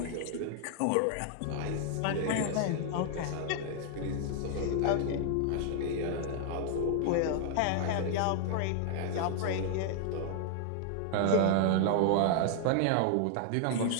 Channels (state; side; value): different; both; correlation 0.00